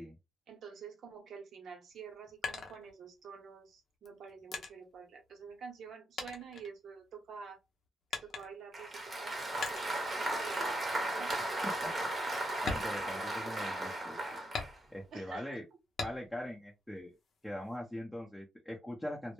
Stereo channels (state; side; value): normal; both; correlation 0.81